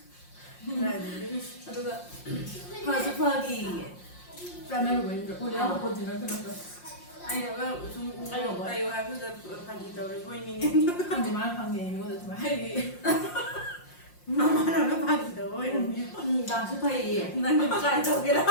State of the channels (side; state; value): right; late; 5.6 ms